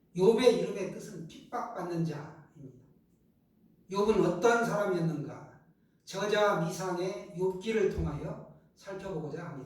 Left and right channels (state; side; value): identical; both; correlation 1.00